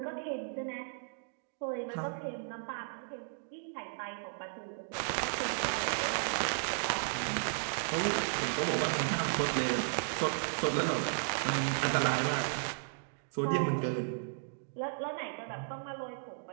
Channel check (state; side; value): silent; left; digital silence